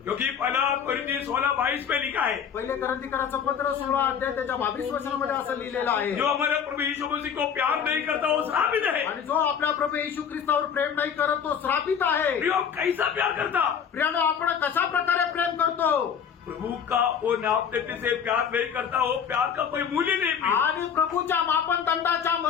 क्योंकि पहला कोरिन्थी 16:22 में लिखा है, पहिले करंतीकराचं पत्र 16 अध्याय त्याच्या 22 वचनामध्ये असं लिहिलेलं आहे, जो हमारे प्रभु यीशु मसीह को प्यार नहीं करता वो श्रापित है। आणि जो आपल्या प्रभू येशू ख्रिस्तावर प्रेम नाही करत तो श्रापित आहे. प्रियो, कैसा प्यार करता? प्रियांनो, आपण कशा प्रकारे प्रेम करतो? प्रभु का वो नापते से प्यार नहीं करता, वो प्यार का कोई मूल्य नहीं प्रिय। आणि प्रभूच्या मापनदंडाच्या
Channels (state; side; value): quieter; right; 7.6 dB